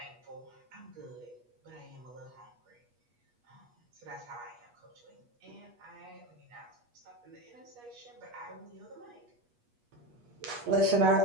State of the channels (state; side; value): late; left; 8.3 ms